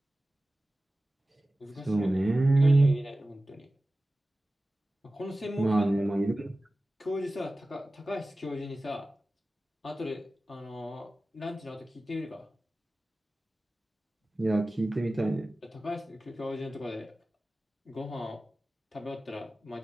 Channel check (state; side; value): normal; both; correlation 0.96